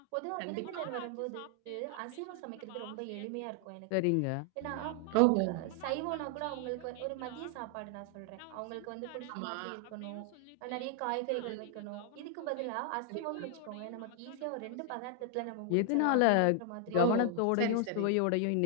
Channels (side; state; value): both; different; correlation 0.00